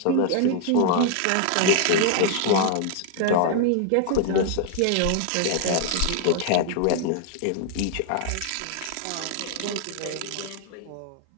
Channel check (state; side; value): different; both; correlation 0.00